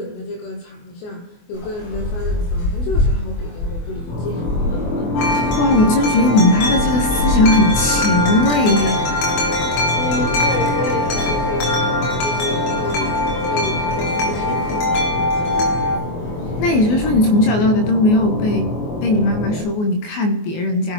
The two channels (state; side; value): late; right; 24 ms